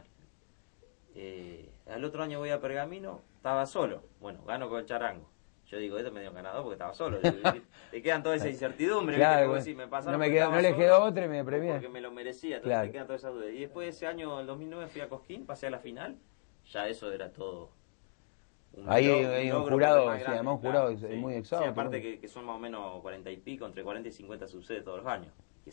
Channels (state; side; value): silent; right; digital silence